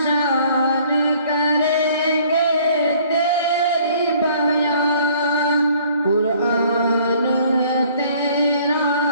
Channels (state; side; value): inverted; both; correlation -0.57